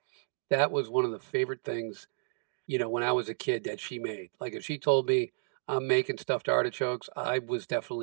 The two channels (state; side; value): silent; left; digital silence